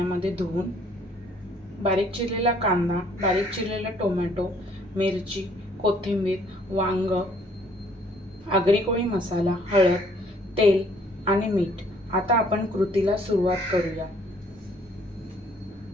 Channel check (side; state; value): both; normal; correlation 0.62